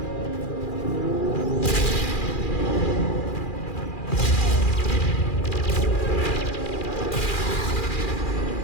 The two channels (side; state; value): right; late; 2.4 ms